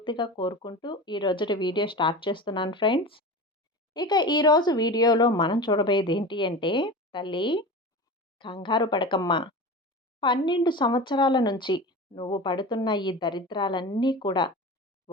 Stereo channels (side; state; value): both; normal; correlation 0.30